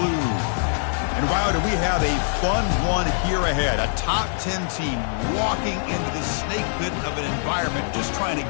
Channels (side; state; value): right; silent; digital silence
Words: And wow, do we have a fun one here ahead. A top 10 team walking into the snake pit of an environment, just trying to